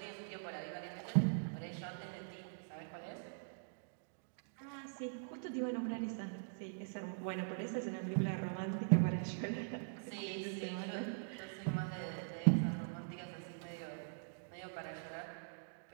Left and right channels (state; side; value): silent; left; digital silence